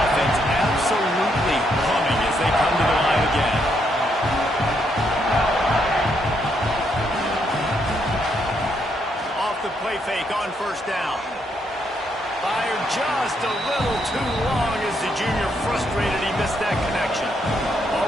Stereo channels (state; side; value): normal; both; correlation 0.76